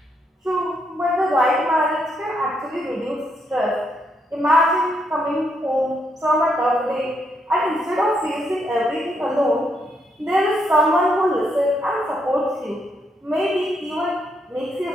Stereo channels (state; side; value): normal; both; correlation 0.77